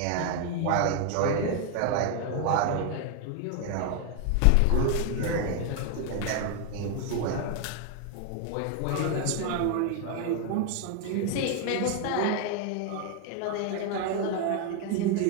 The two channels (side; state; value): both; different; correlation 0.00